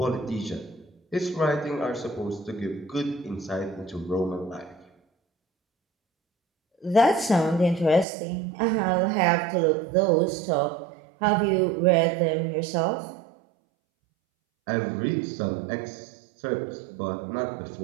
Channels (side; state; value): left; drops out; at 8.1 s